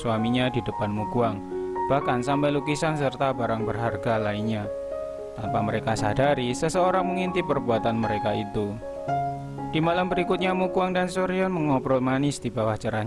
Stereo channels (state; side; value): identical; both; correlation 1.00